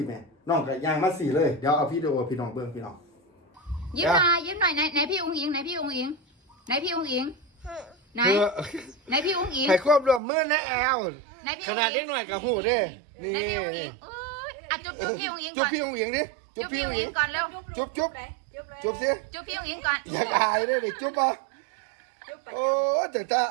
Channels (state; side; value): drops out; left; at 10.2 s